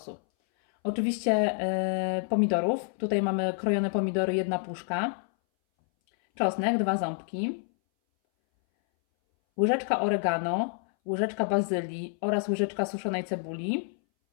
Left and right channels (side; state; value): right; silent; 59 dB below the other